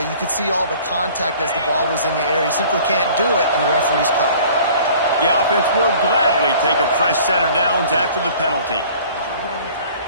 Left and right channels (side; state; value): both; inverted; correlation -0.50